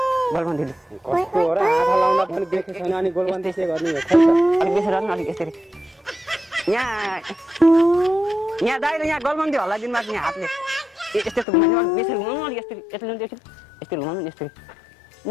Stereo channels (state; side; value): drops out; right; at 11.5 s